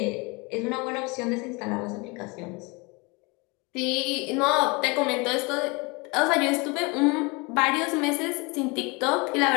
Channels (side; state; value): right; quieter; 27.7 dB